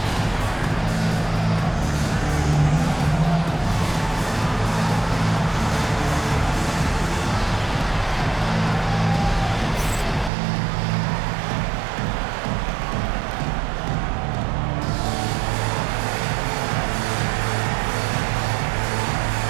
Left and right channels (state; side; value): drops out; left; at 10.3 s